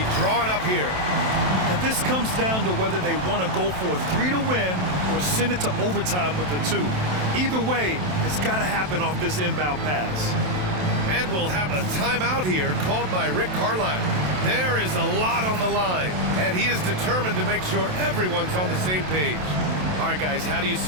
drawing up here? And this comes down to whether they want to go for a 3 to win or send it to overtime with a 2. Either way, it's got to happen off this inbound pass. And we'll have a timeout here called by Rick Carlisle. There is a lot on the line, and he is determined to make sure everyone's on the same page. All right, guys, how do you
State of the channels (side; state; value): left; late; 27 ms